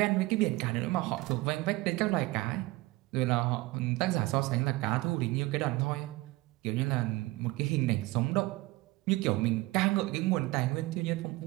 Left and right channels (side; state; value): left; quieter; 20.7 dB